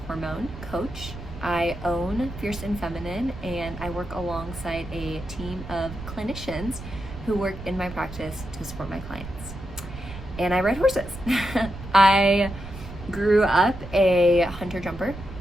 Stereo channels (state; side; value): noise; right; rumble, 12 dB below the sound